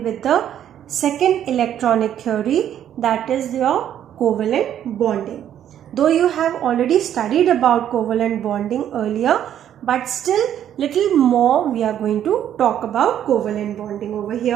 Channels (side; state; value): left; quieter; 10.4 dB